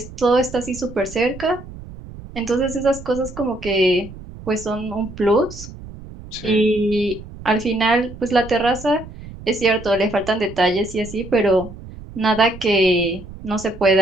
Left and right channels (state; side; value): noise; right; rumble, 15 dB below the sound